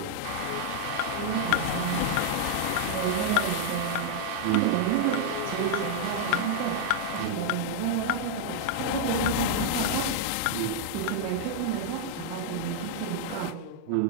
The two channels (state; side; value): different; both; correlation -0.01